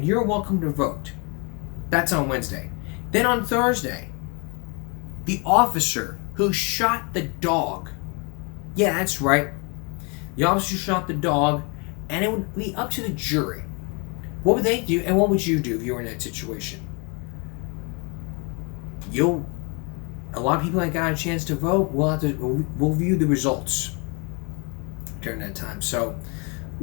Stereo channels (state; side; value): quieter; right; 32.6 dB